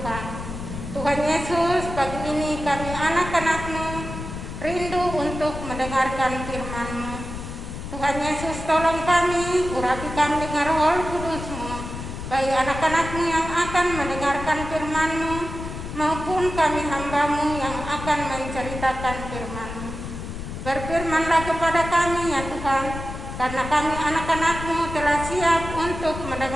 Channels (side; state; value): left; noise; rumble, 8 dB below the sound